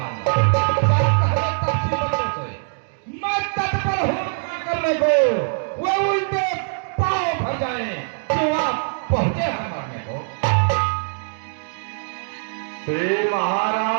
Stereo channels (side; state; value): left; silent; digital silence